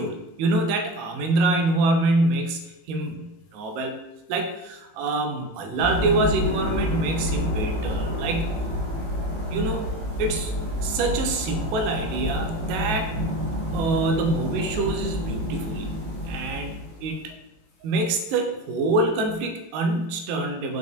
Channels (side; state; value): left; late; 18 ms